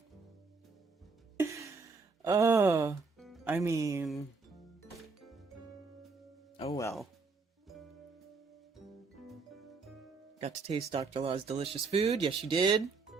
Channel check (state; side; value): quieter; left; 4.4 dB